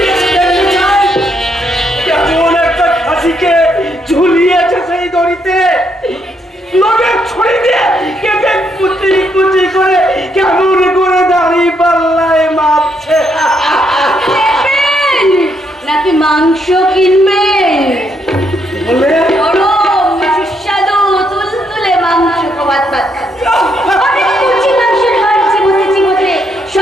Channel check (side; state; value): both; normal; correlation 0.75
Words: যেতে চাই। কেমন একটা খাসিকে ঝুলিয়েছে সেই দড়িতে, লোকের ছড়ি দিয়ে কেটে কুচি কুচি করে কেমন করে দাঁড়িয়ে পাল্লায় মাপছে। নেবেন নাকি মাংস কিনবেন? বলে গরম সুস্বাদু তুলতুলে মাংস ভাত অনেক কুচি মাংসের হাড় চিবোতে